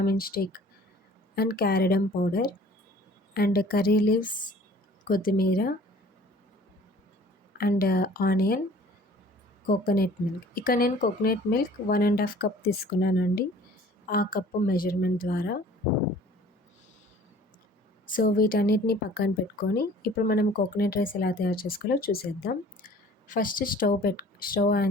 stick and cardamom powder and curry leaves, కొత్తిమీర అండ్ ఆనియన్, కోకోనట్ మిల్క్. ఇక్కడ నేను కోకోనట్ మిల్క్ 1.5 కప్ తీసుకున్నానండి, ఆ కప్పు మెజర్మెంట్ ద్వారా. సో వీటన్నిటిని పక్కన పెట్టుకొని ఇప్పుడు మనం కోకోనట్ రైస్ ఎలా తయారు చేసుకోవాలో చూసేద్దాం. ఫస్ట్ స్టవ్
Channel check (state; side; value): normal; both; correlation 0.50